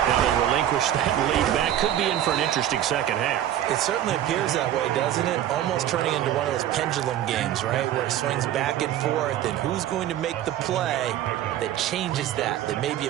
Now they relinquish that lead back. Could be in for an interesting second half. It certainly appears that way, doesn't it? Almost turning into one of those pendulum games, right? Where it swings back and forth, and who's going to make the play that changes that maybe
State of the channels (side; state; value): left; quieter; 11.7 dB